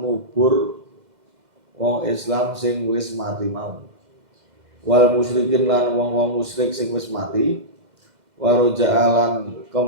ngubur wong Islam sing wis mati mau. Wal musyrikin lan wong-wong musyrik sing wis mati, waroja'alan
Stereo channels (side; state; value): left; late; 2.0 ms